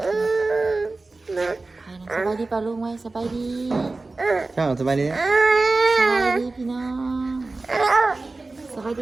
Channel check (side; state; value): left; quieter; 3.4 dB